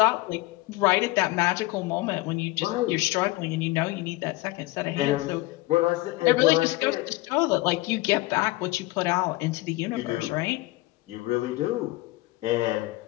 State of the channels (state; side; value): quieter; right; 20.4 dB